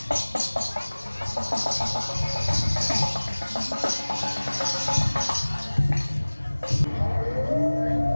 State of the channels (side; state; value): both; inverted; correlation -1.00